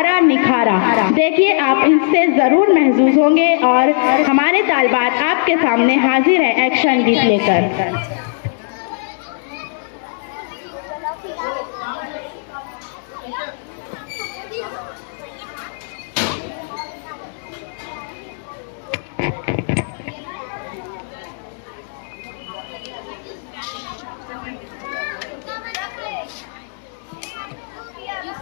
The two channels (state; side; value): silent; right; digital silence